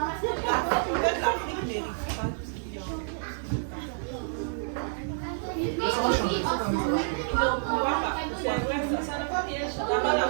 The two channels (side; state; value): left; silent; digital silence